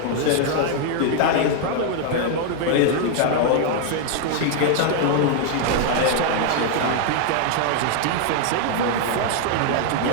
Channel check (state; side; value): different; both; correlation 0.00